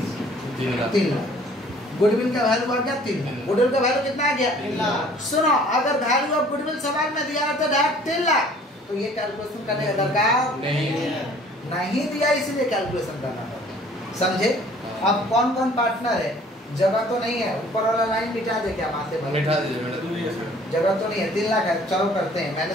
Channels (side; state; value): both; normal; correlation 0.54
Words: लाख। गुडविल का वैल्यू आ गया 3 लाख, गुडविल का वैल्यू कितना आ गया 3 लाख। सुनो अगर वैल्यू ऑफ गुडविल सवाल में दिया रहता डायरेक्ट 3 लाख तो ये कैलकुलेशन करने का दरकार नहीं दिया, इसीलिए कैलकुलेशन करना पड़ता, समझे। अब कौन कौन पार्टनर है, जगह तो नहीं है, ऊपर वाला लाइन मिटा दे क्या माथे पर, मिटा दीजिए, जगह तो नहीं है, 3 लाख है, चलो करते हैं